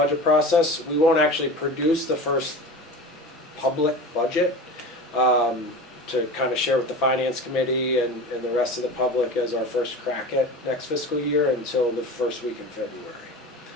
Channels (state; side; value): normal; both; correlation 0.32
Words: process. We won't actually produce the first public budget, to kind of share with the finance committee and the rest of the public as our first crack at next fiscal year until the first week in February.